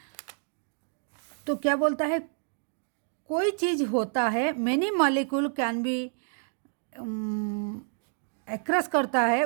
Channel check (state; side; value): silent; left; 59 dB below the other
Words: तो क्या बोलता है, कोई चीज़ होता है, many molecule can be acres करता है